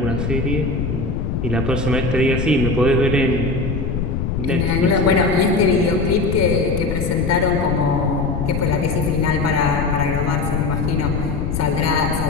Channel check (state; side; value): noise; left; rumble, 2 dB below the sound